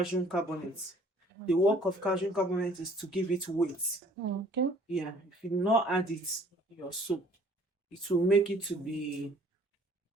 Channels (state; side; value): normal; both; correlation 0.56